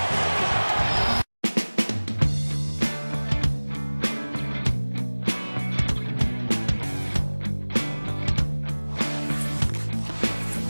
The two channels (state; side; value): inverted; both; correlation -1.00